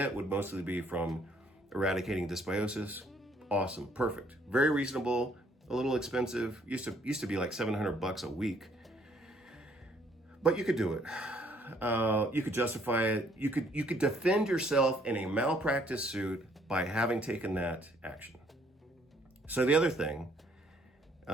would mostly be from eradicating dysbiosis. Awesome, perfect, very reasonable, a little expensive. Used to be like $700 a week, but you could do it. You could justify it. You could defend yourself in a malpractice suit by having taken that action. So the other thing.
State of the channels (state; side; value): normal; both; correlation 0.65